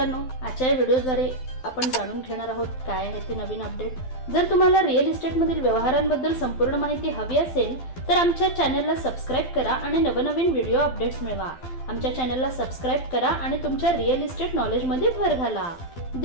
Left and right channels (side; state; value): right; late; 12 ms